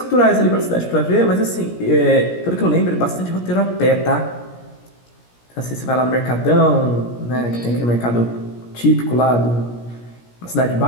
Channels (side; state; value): right; late; 17 ms